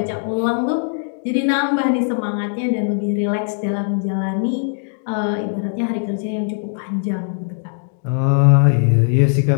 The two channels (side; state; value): right; silent; digital silence